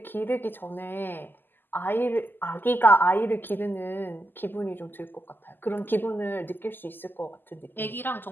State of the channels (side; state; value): right; late; 0.093 ms